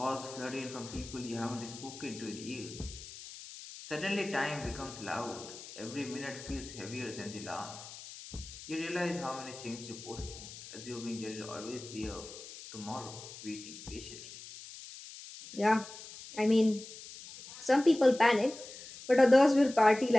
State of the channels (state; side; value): noise; left; hiss, 14 dB below the sound